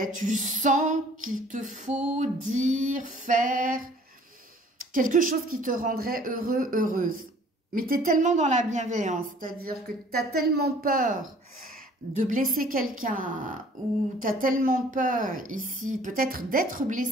tu sens qu'il te faut dire, faire quelque chose qui te rendrait heureux, heureuse. Mais tu es tellement dans la bienveillance, c'est-à-dire que tu as tellement peur de blesser quelqu'un ou tu as tellement peur ici, peut-être d'être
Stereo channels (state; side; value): normal; both; correlation 0.54